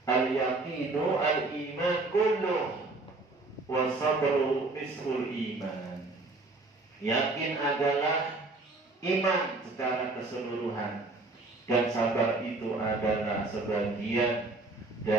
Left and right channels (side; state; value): left; quieter; 3.3 dB